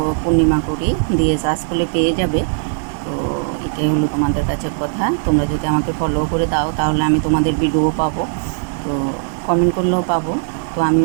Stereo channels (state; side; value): silent; left; digital silence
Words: পূর্ণিমা করি, দিয়ে সার্চ করলে পেয়ে যাবে। তো এটাই হলো তোমাদের কাছে কথা। তোমরা যদি আমাকে ফলো করে দাও তাহলে আমি তোমাদের ভিডিও পাবো, তো কমেন্ট করলেও পাবো। তো